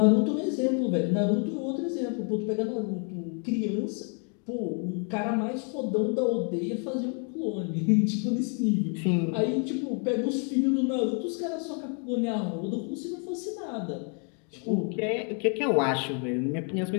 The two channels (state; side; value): quieter; right; 40.0 dB